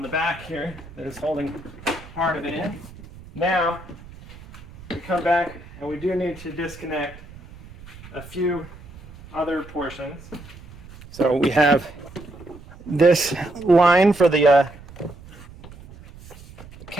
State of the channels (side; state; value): right; noise; rumble, 18 dB below the sound